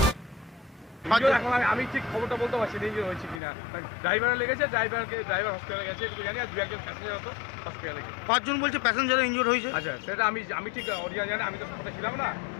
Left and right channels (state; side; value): drops out; right; at 3.4 s